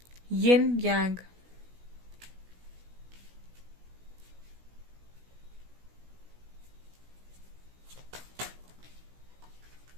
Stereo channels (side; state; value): left; late; 17 ms